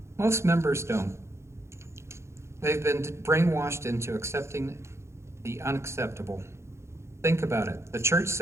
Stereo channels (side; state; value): left; late; 0.13 ms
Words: Most members don't. They've been brainwashed into accepting the unacceptable. Think about it. The church